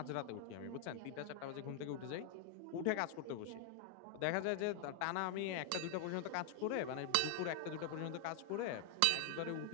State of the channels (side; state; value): both; different; correlation 0.00